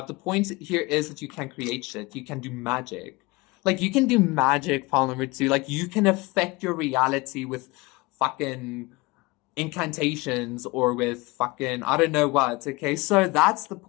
The point here is that you can create shit. You can do magic. Like you can do magic, pile number 2. Like you can affect your reality with fucking incantations or with fucking I don't know what, okay? So that's the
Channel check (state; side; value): quieter; right; 23.7 dB